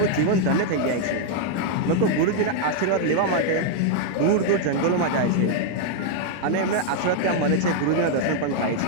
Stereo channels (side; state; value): both; different; correlation 0.00